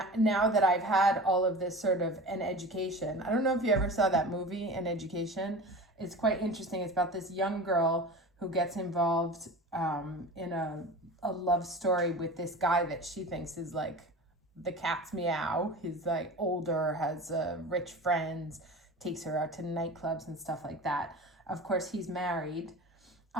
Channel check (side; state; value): both; normal; correlation 0.34